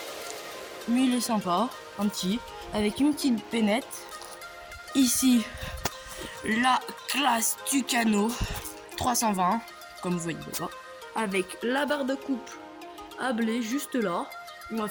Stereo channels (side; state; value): both; identical; correlation 1.00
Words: Mais il est sympa, un petit, avec une petite peinette. Ici, la classe Tucano 320, comme vous voyez là, avec la barre de coupe à blé juste là. On va